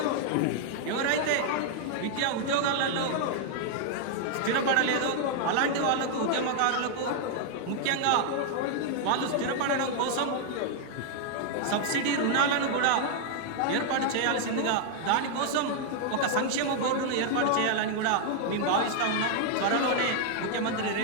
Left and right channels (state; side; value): different; both; correlation 0.00